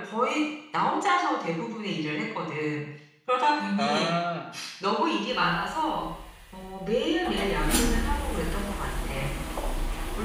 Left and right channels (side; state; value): both; identical; correlation 1.00